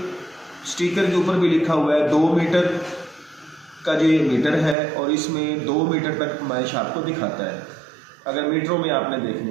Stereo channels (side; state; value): left; drops out; at 4.8 s